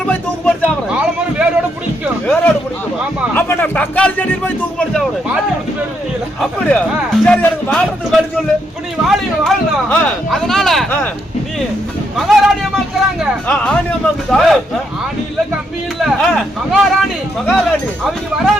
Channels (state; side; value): normal; both; correlation 0.77